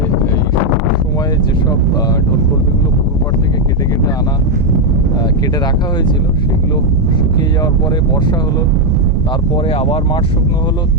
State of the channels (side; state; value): both; normal; correlation 0.01